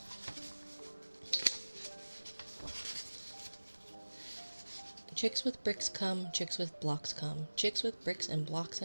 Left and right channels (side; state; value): both; inverted; correlation -1.00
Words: Chicks with bricks come, chicks with blocks come. Chicks with bricks and blocks